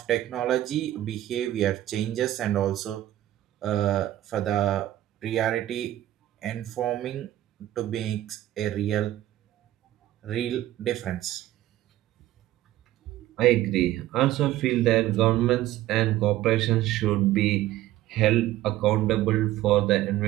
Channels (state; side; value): quieter; left; 14.3 dB